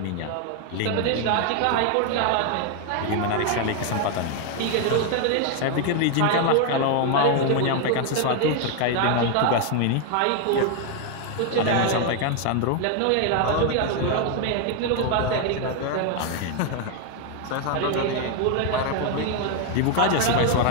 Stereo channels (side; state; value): both; different; correlation 0.01